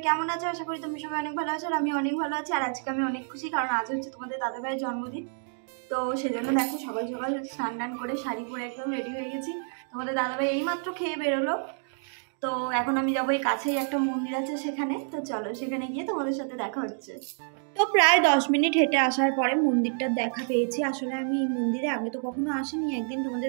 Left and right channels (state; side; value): silent; left; 59 dB below the other